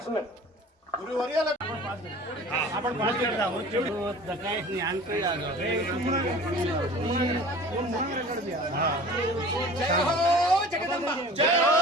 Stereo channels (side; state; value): both; normal; correlation 0.42